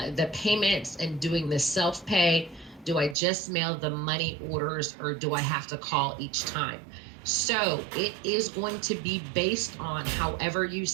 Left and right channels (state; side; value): drops out; left; at 3.2 s